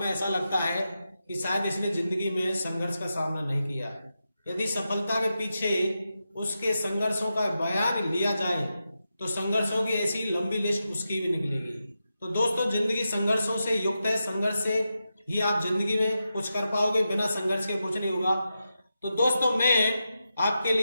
ऐसा लगता है कि शायद इसने जिंदगी में संघर्ष का सामना नहीं किया है। यदि सफलता के पीछे उसके संघर्षों का बयान लिया जाए तो संघर्षों की ऐसी लंबी लिस्ट उसकी भी निकलेगी। तो दोस्तों जिंदगी संघर्षों से युक्त है, संघर्ष से ही आप जिंदगी में कुछ कर पाओगे, बिना संघर्ष के कुछ नहीं होगा। तो दोस्तों मैं आपके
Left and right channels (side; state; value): both; inverted; correlation -0.89